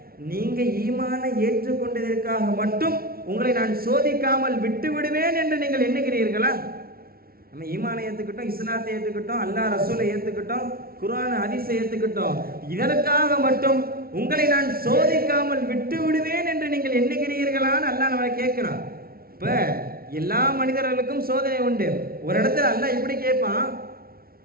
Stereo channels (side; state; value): left; late; 0.44 ms